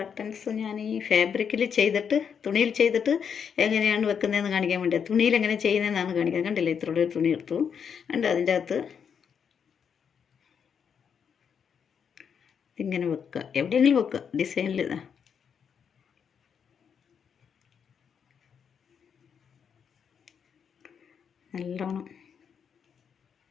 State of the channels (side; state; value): right; quieter; 7.2 dB